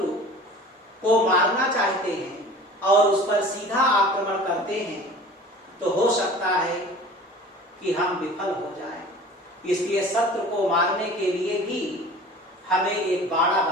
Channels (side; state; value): both; normal; correlation 0.42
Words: को मारना चाहते हैं और उस पर सीधा आक्रमण करते हैं तो हो सकता है कि हम विफल हो जाएं। इसलिए शत्रु को मारने के लिए भी हमें एक बाड़ा